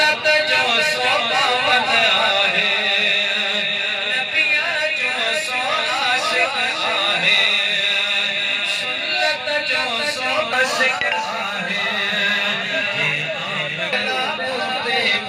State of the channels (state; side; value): identical; both; correlation 1.00